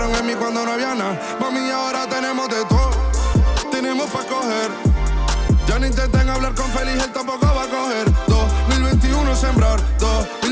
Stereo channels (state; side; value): identical; both; correlation 1.00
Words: en mí cuando no había nada. Mami, ahora tenemos de todo, tenemos pa' coger. Ya no intenten hablar con Feliz, él tampoco va a coger. 2021 sembrar,